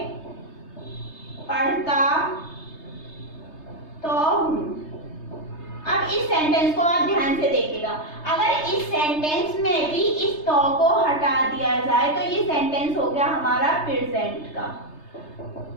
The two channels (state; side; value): late; right; 3.3 ms